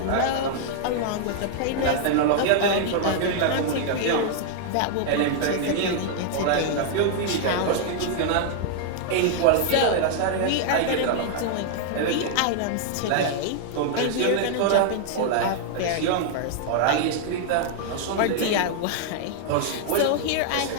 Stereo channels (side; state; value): both; different; correlation 0.00